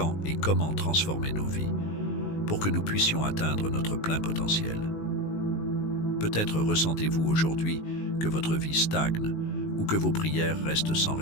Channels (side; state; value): right; late; 19 ms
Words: et comment transformer nos vies pour que nous puissions atteindre notre plein potentiel. Peut-être ressentez-vous aujourd'hui que votre vie stagne ou que vos prières restent sans